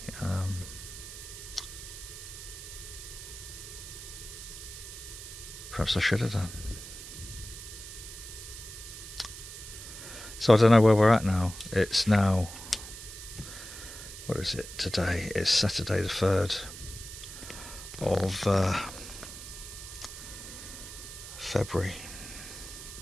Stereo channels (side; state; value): right; noise; hiss, 12 dB below the sound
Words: Perhaps I should have done. So I don't know where we're at now. It's now, what is it today? It's Saturday the 3rd of February,